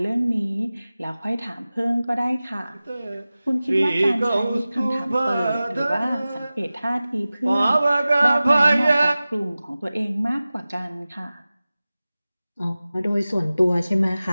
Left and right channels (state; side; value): inverted; both; correlation -0.97